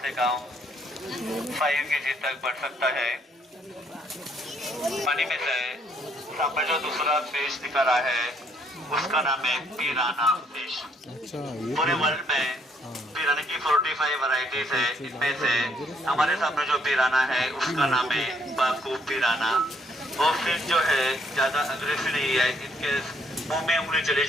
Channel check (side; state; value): both; normal; correlation 0.68